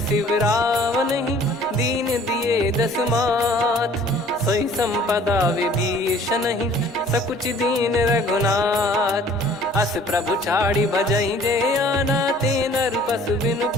रावण ही, दीन दिए दस मात। सोई संपदा विभीषण ही, सकुच दीन रघुनाथ। अस प्रभु छाड़ी भजई जे आना, ते नर पशु बिनु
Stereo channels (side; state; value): both; normal; correlation 0.53